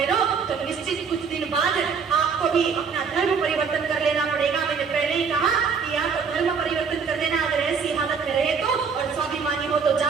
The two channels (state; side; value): quieter; left; 5.8 dB